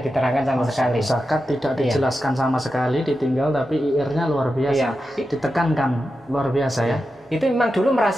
diterangkan sama sekali. Zakat tidak dijelaskan sama sekali, ditinggal, tapi IR-nya luar biasa. Ditekankan luar biasa ya. Itu memang dulu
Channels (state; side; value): normal; both; correlation 0.90